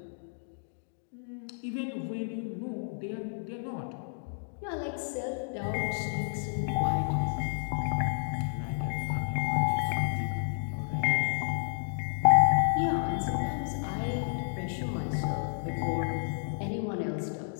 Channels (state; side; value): silent; right; digital silence